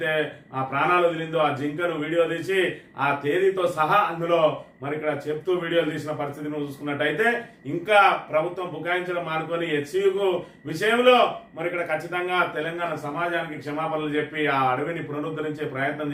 ఆ ప్రాణాలు వదిలిందో ఆ జింకను వీడియో తీసి ఆ తేదీతో సహా అందులో మరి ఇక్కడ చెప్తూ వీడియోలు తీసిన పరిస్థితిని చూసుకున్నట్టయితే ఇంకా ప్రభుత్వం బుకాయించడం మానుకొని హెచ్సియు విషయంలో మరి ఇక్కడ ఖచ్చితంగా తెలంగాణ సమాజానికి క్షమాపణలు చెప్పి ఆ అడవిని పునరుద్ధరించే ప్రయత్నం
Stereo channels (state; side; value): identical; both; correlation 1.00